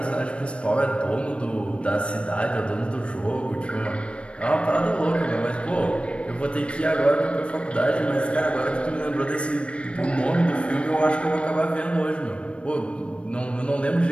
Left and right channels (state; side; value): late; right; 0.059 ms